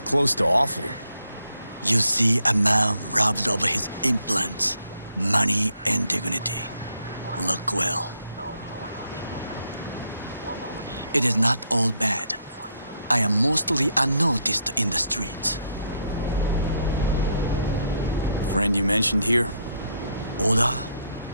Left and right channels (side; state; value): both; inverted; correlation -0.74